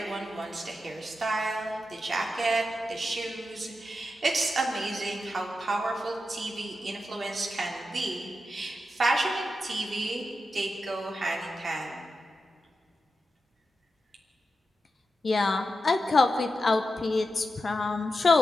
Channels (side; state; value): both; normal; correlation 0.89